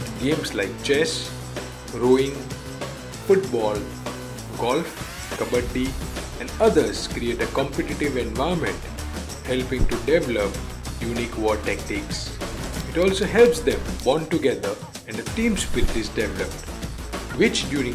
Games like chess, rowing, football, golf, kabaddi, and others create a competitive environment, helping to develop unique war tactics. It also helps them bond together and a team spirit is developed, which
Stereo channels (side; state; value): both; identical; correlation 1.00